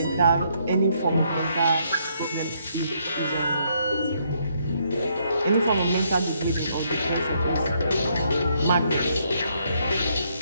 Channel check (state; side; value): inverted; both; correlation -0.72